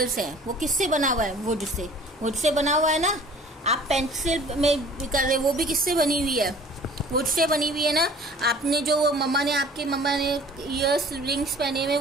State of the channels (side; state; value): both; normal; correlation 0.49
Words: हैं, वो किससे बना हुआ है? वुड से बना हुआ है ना। आप पेंसिल में कर रहे, वो भी किससे बनी हुई है? वुड से बनी हुई है ना। आपने जो आपके मम्मा ने ईयर्स रिंग्स पहने हुए,